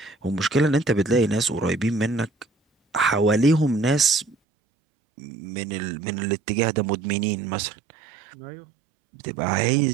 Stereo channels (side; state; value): left; drops out; at 4.4 s